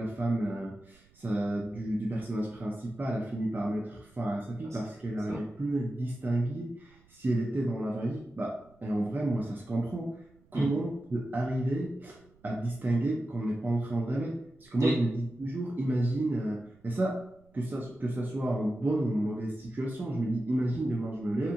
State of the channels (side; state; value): right; noise; rumble, 29 dB below the sound